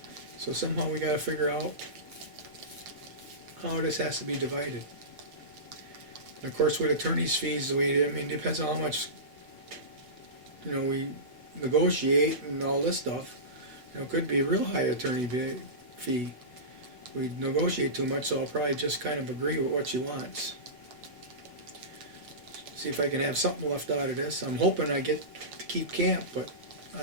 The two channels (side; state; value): left; late; 8.1 ms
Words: So somehow we got to figure out how this has to be divided. And of course, with attorney's fees, it depends on how much, we negotiate and all this stuff. It could be a real high attorney fee. we negotiate too much, so I'll probably just kind of agree with what she wants. See if I can have something left out of this. I'm hoping I get to keep camp, but